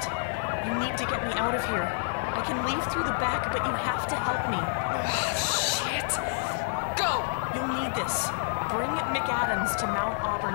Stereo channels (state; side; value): silent; right; 59 dB below the other